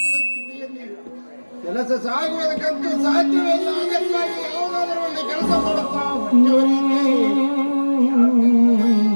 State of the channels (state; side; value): inverted; both; correlation -1.00